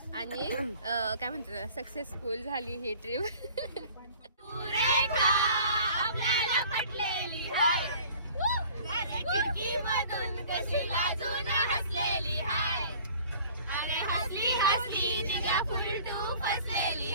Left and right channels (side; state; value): both; inverted; correlation -0.49